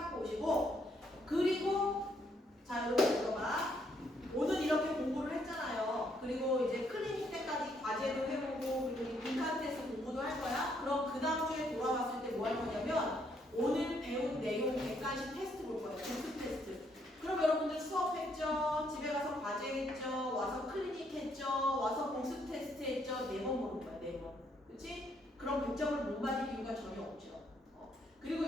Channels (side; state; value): both; normal; correlation 0.72